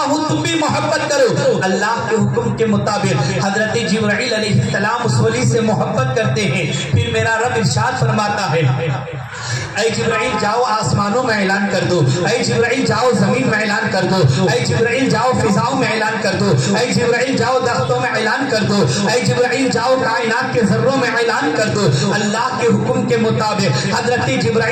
ہوں تم بھی محبت کرو، اللہ کے حکم کے مطابق حضرت جبرائیل علیہ السلام اس ولی سے محبت کرتے ہیں۔ پھر میرا رب ارشاد فرماتا ہے اے جبرائیل جاؤ آسمانوں میں اعلان کر دو، اے جبرائیل جاؤ زمین میں اعلان کر دو، اے جبرائیل جاؤ فضاؤں میں اعلان کر دو، اے جبرائیل جاؤ درختوں میں اعلان کر دو، اے جبرائیل جاؤ کائنات کے ذروں میں اعلان کر دو۔ اللہ کے حکم کے مطابق حضرت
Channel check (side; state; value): both; identical; correlation 1.00